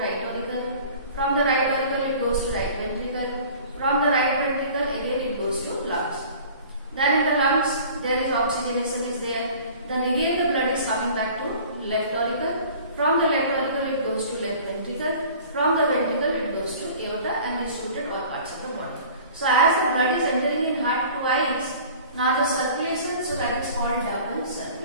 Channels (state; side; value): inverted; both; correlation -0.45